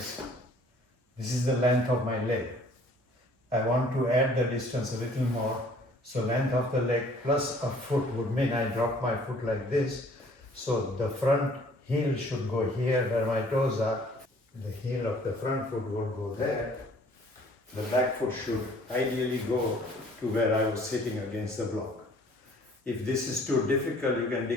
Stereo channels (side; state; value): both; normal; correlation 0.56